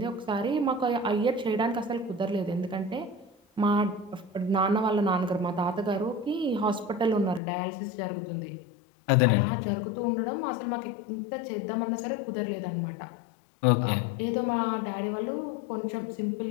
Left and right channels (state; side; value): drops out; right; at 7.4 s